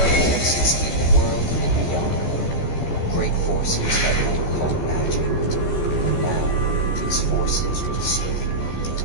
exists in the world and beyond great forces that we call magic. And now, these forces will save you.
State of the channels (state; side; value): late; right; 14 ms